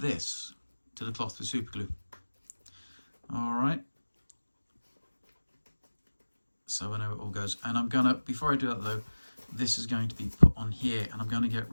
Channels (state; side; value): inverted; both; correlation -1.00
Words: to the cloth with super glue. All right. So I know it all goes. And I'm gonna, before I do that though, this is going to be put on here, and I'm going to get